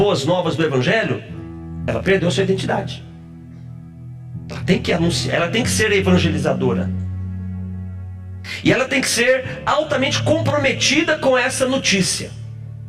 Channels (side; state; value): both; identical; correlation 1.00